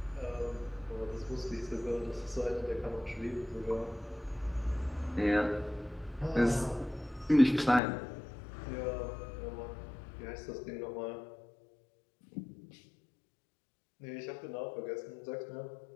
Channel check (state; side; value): drops out; right; at 7.8 s